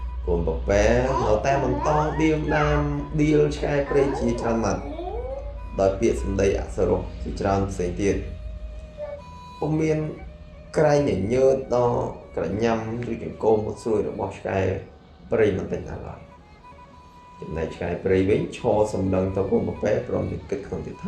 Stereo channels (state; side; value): identical; both; correlation 1.00